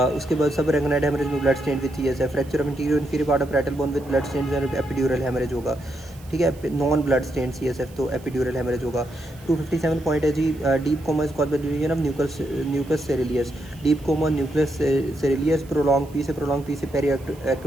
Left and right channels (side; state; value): right; noise; hiss, 25 dB below the sound